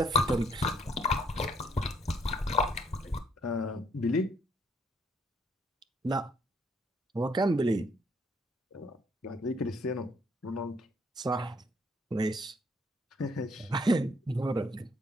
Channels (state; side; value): normal; both; correlation 0.66